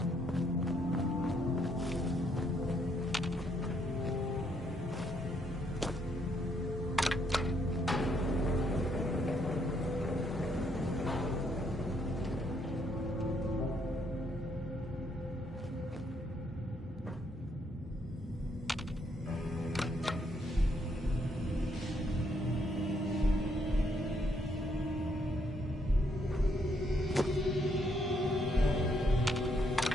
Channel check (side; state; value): both; normal; correlation 0.73